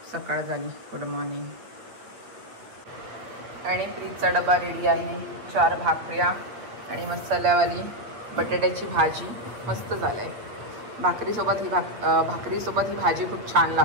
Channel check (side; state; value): left; late; 8.8 ms